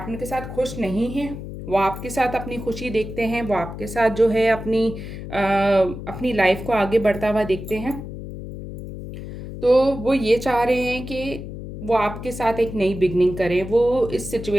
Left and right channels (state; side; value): noise; left; hum, 10 dB below the sound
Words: के साथ खुश नहीं हैं। वो आपके साथ अपनी खुशी देखते हैं, वो आपके साथ जो है अपनी लाइफ को आगे बढ़ता हुआ देखते हैं। तो वो ये चाह रहे हैं कि वो आपके साथ एक नई बिगनिंग करें, वो इस